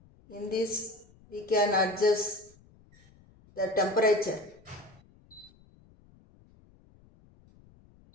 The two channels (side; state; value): left; noise; rumble, 28 dB below the sound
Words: in this we can adjust the temperature.